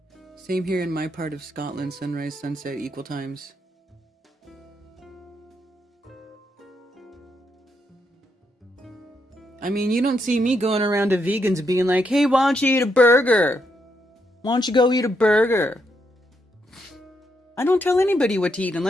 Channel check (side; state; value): both; normal; correlation 0.79